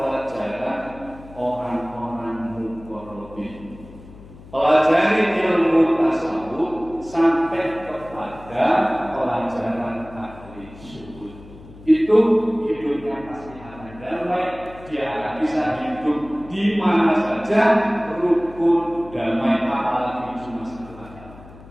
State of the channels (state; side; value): noise; left; hum, 19 dB below the sound